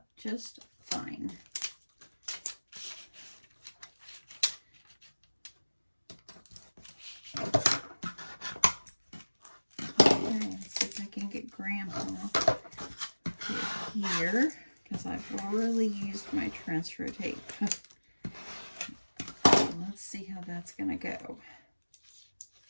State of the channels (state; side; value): inverted; both; correlation -1.00